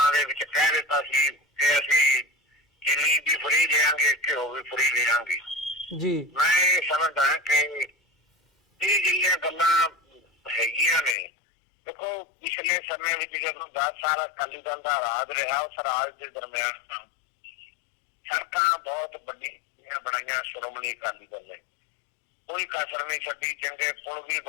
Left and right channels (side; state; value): right; drops out; at 11.2 s